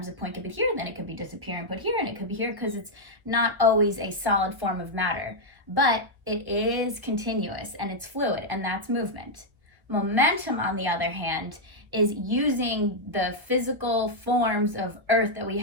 a point could be here, then it could be disappear and put here, and it could be here because it's not always a solid form of matter. But it is continuous and it's fluid, and that's movement. Momentum, on the other hand, is using the physical forms of earth that we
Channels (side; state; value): left; late; 1.2 ms